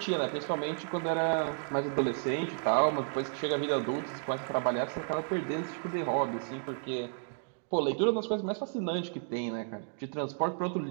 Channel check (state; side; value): silent; left; 56 dB below the other